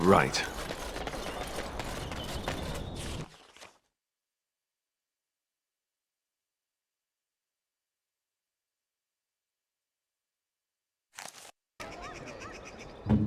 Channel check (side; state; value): both; identical; correlation 1.00